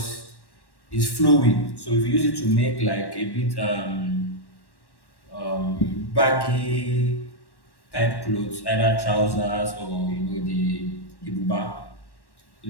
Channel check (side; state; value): right; late; 1.1 ms